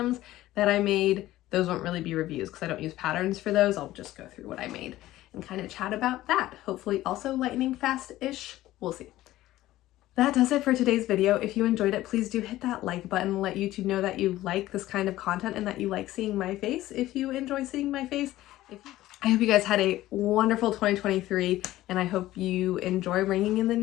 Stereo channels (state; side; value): quieter; right; 15.5 dB